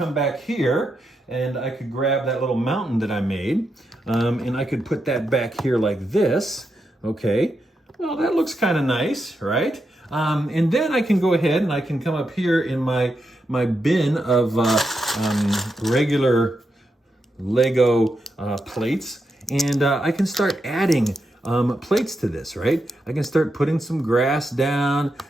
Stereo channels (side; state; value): both; normal; correlation 0.85